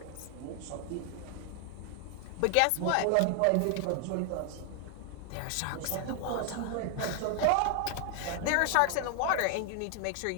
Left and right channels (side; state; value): both; different; correlation 0.00